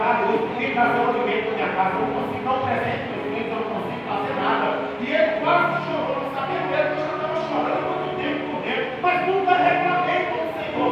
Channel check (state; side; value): identical; both; correlation 1.00